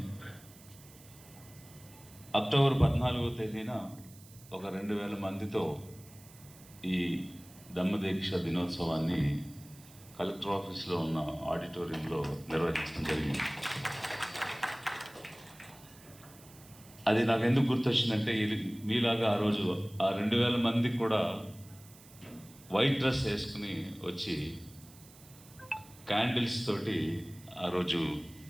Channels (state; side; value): noise; right; hiss, 22 dB below the sound